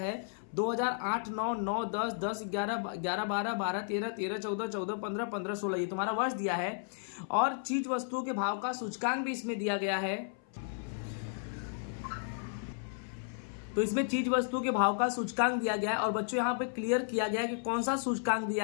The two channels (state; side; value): silent; right; 55 dB below the other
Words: 2008, 9, 9, 10, 10, 11, 11, 12, 12, 13, 13, 14, 14, 15, 15, 16 ये तुम्हारा वर्ष दिया है। और चीज वस्तुओं के भाव का सूचकांक भी इसमें दिया गया है। तो इसमें चीज वस्तु के भाव का सूचकांक दिया गया है। और बच्चों यहाँ पे क्लियर किया गया है कि कौन सा सूचकांक